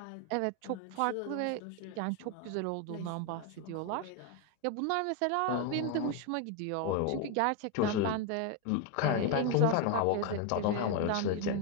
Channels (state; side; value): different; both; correlation 0.01